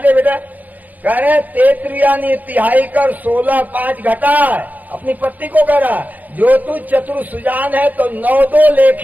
बेटा? कह रहे तेत्रियानु तिहाई कर 16 5 घटा है, अपनी पत्नी को कह रहा जो तू चतुर सुजान है तो 9 2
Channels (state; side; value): late; left; 0.081 ms